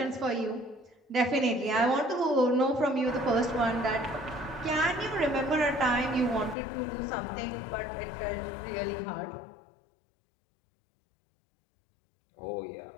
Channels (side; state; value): right; drops out; at 6.6 s